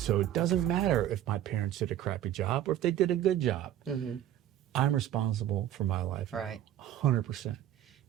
it doesn't matter if my parents did a crappy job or if they did a good job. Mm-hmm. I'm responsible for my life, right? 100%,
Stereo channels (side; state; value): left; quieter; 11.8 dB